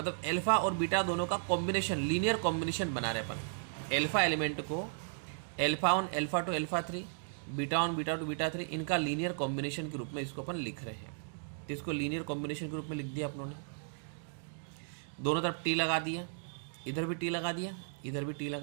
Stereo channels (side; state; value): left; silent; digital silence